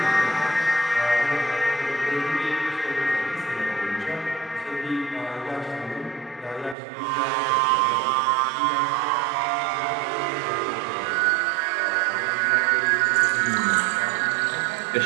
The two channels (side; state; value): left; drops out; at 6.8 s